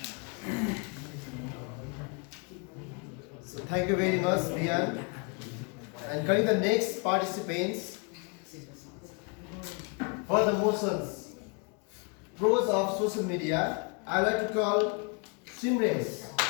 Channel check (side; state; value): right; quieter; 34.3 dB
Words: So thank you very much, Bian. And coming the next participants for the motions pros of social media, I would like to call Simrace.